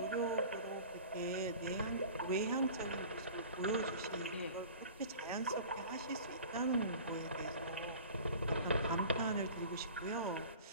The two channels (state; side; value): inverted; both; correlation -0.41